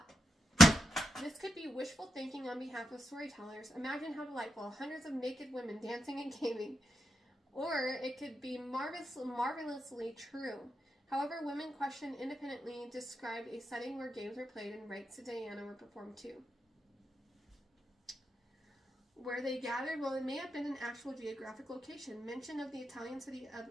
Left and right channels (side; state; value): both; normal; correlation 0.84